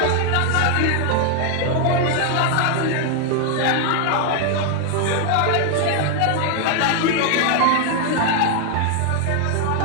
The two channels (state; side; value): different; both; correlation 0.00